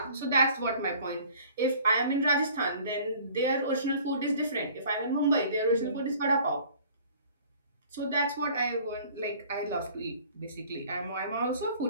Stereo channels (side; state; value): both; inverted; correlation -0.51